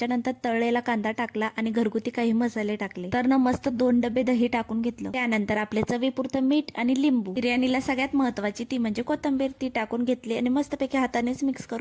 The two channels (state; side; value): identical; both; correlation 1.00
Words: तळलेला कांदा टाकला आणि घरगुती काही मसाले टाकले. तर ना मस्त 2 डबे दही टाकून घेतलं. त्यानंतर आपल्या चवीपुरतं मीठ आणि लिंबू. बिर्याणीला सगळ्यात महत्वाची ती म्हणजे कोथिंबीर, ती टाकून घेतली आणि मस्तपैकी हातानेच मिक्स